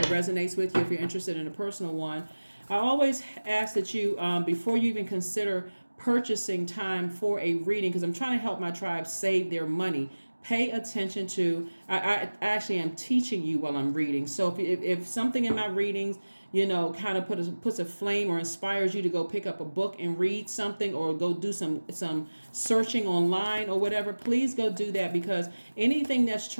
resonates with you. If you're interested in a personal one, I always ask that you, before you even consider purchasing time for a reading, because I'm trying to help my tribe save their money, pay attention to, I actually am teaching you while I'm reading. So if something in my readings, kind of puts a flame or inspires you to go pick up a book and read something, or go do some searching online or whatever, please go do that, because anything that's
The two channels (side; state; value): both; inverted; correlation -1.00